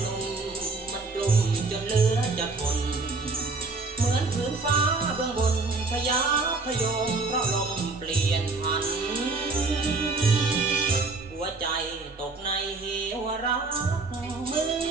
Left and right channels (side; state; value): left; quieter; 3.7 dB